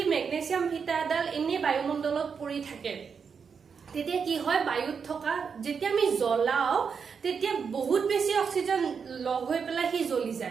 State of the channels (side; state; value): left; quieter; 6.1 dB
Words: মেগনেছিয়াম ফিটাৰডাল এনে বায়ুমণ্ডলত পৰি থাকে তেতিয়া কি হয়, বায়ুত থকা যেতিয়া আমি জ্বলাও তেতিয়া বহুত বেছি অক্সিজেন লগ হৈ পেলাই হি জ্বলি